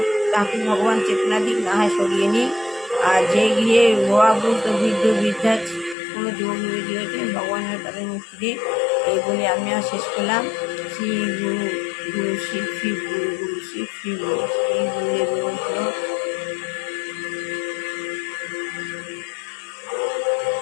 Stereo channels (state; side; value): drops out; right; at 6.0 s